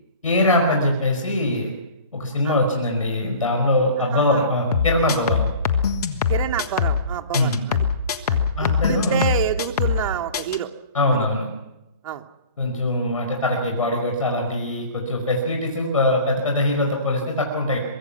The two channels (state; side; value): inverted; both; correlation -0.43